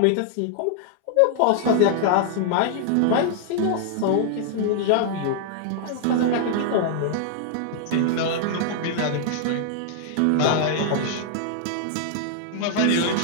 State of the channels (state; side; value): different; both; correlation -0.01